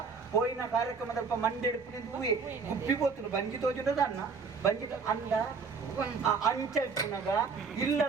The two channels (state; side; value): quieter; left; 5.0 dB